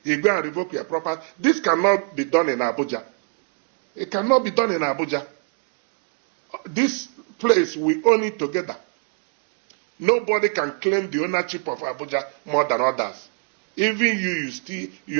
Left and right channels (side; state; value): left; quieter; 39.6 dB